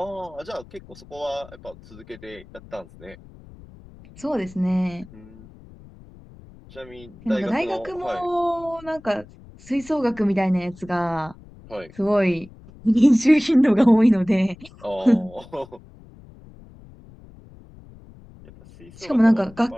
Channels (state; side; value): noise; left; rumble, 21 dB below the sound